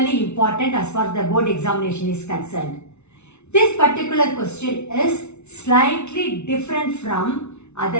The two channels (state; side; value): late; right; 0.81 ms